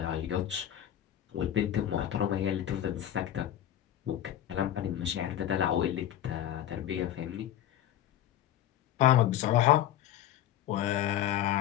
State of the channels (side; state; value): right; quieter; 11.8 dB